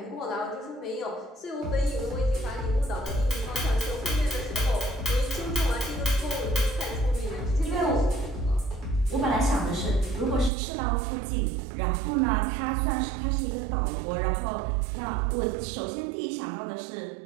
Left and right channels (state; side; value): drops out; left; at 10.5 s